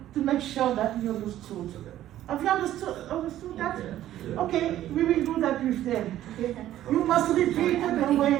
make sure that you understood. Have you understood that? Okay, we will do that with them. Okay? You must repeat the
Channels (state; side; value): quieter; left; 13.0 dB